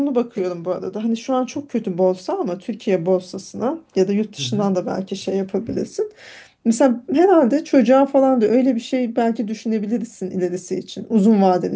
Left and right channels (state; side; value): identical; both; correlation 1.00